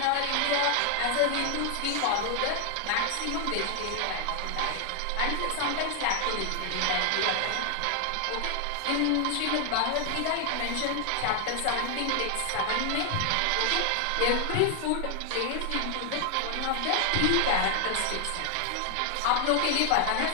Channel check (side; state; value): both; different; correlation 0.00